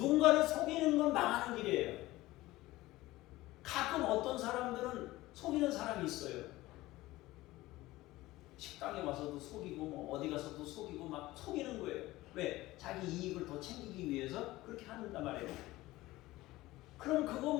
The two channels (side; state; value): right; quieter; 18.1 dB